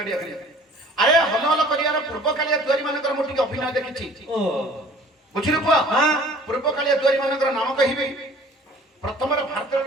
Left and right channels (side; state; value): both; normal; correlation 0.50